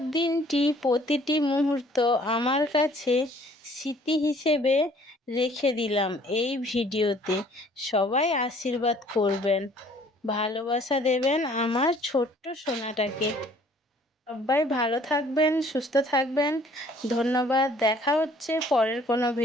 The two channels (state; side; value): normal; both; correlation 0.57